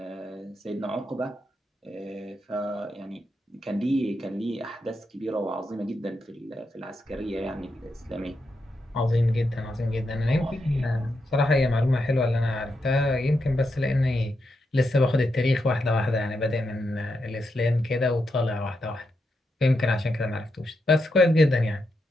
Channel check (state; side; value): normal; both; correlation 0.84